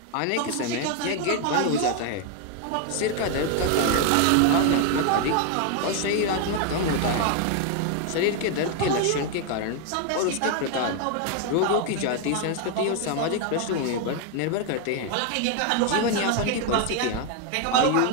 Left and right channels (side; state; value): both; different; correlation 0.01